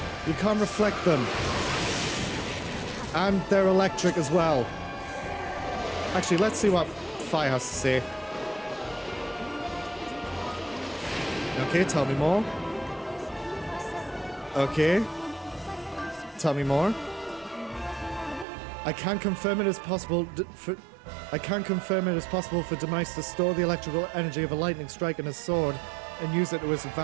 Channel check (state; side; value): drops out; left; at 18.4 s